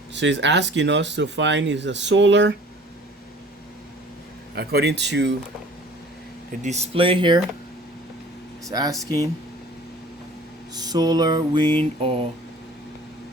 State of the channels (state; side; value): normal; both; correlation 0.49